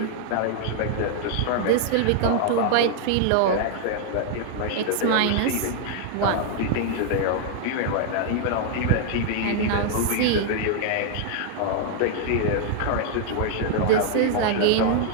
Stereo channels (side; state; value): both; different; correlation 0.00